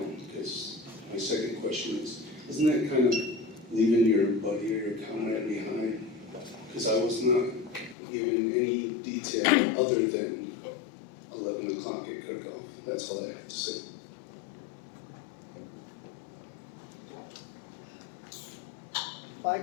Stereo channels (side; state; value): right; drops out; at 8.0 s